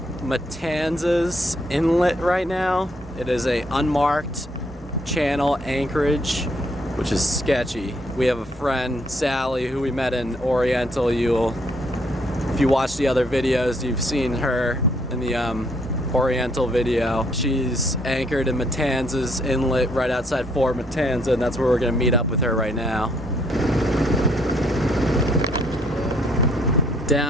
Matanzas Inlet right now. It is a unmarked channel anchorage, which is sketchy. We have a friend, Sally, who we met in Oriental. If you watch the other videos, you've seen her in the Oriental video. She's anchored in Matanzas Inlet right outside Fort Matanzas, and that's where we're gonna meet up with her right now.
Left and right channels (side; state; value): both; normal; correlation 0.69